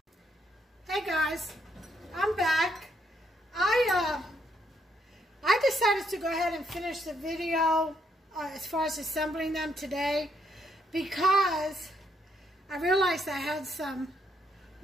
Hey guys, I'm back. I decided to go ahead and finish the video as far as assembling them today because I realized I had some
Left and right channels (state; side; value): normal; both; correlation 0.74